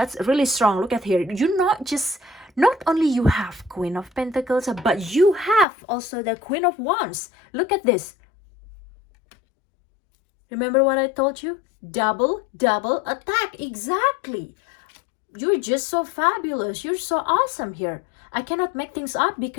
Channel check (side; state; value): right; drops out; at 5.7 s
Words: really strong. Look at here. Not only you have Queen of Pentacles, but you have also the Queen of Wands. Look at this. Remember what I told you? Double attack. Exactly. You're just so fabulous. You're so awesome here. I cannot make things up